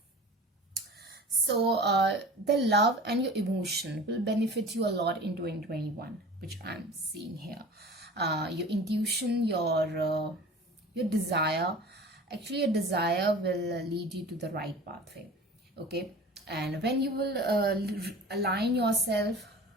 So the love and your emotion will benefit you a lot in 2021, which I'm seeing here. Your intuition, your desire, actually your desire will lead you to the right pathway. Okay, and when you will align yourself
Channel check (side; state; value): both; normal; correlation 0.40